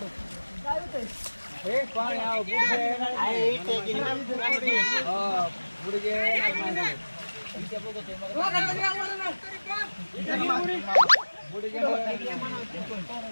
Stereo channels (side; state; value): both; inverted; correlation -1.00